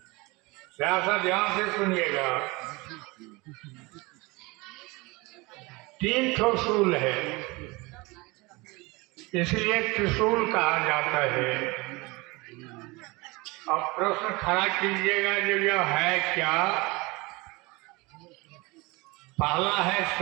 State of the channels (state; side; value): quieter; left; 24.4 dB